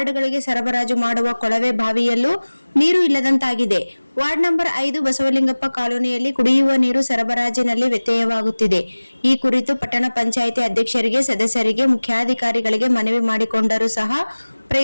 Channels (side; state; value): both; inverted; correlation -1.00